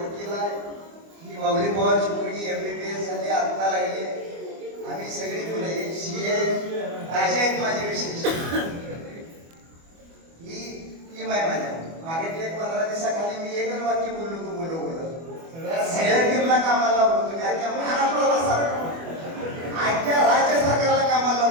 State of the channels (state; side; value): late; left; 24 ms